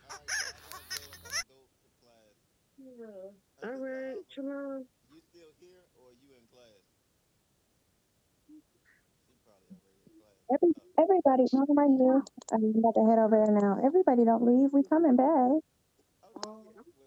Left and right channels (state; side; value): identical; both; correlation 1.00